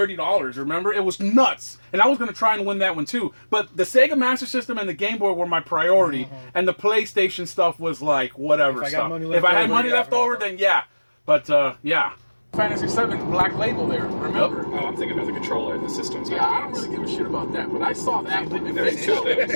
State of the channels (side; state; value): both; inverted; correlation -1.00